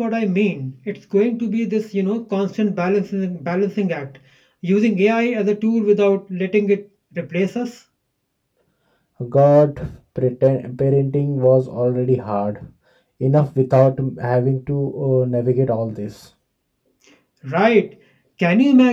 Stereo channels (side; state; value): both; identical; correlation 1.00